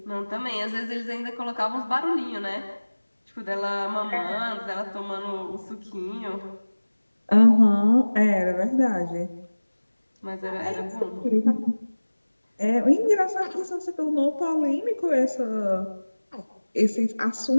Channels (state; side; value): inverted; both; correlation -1.00